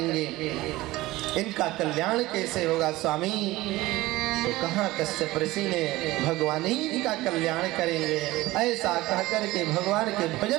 इनका कल्याण कैसे होगा स्वामी। तो कहाँ कश्यप ऋषि ने भगवान ही का कल्याण करेंगे, ऐसा कह करके भगवान के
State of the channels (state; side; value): quieter; left; 18.4 dB